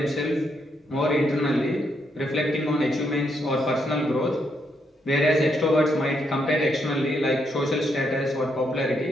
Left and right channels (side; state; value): both; normal; correlation 0.77